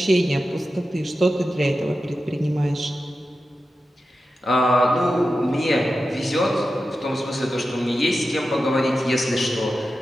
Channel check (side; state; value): both; normal; correlation 0.92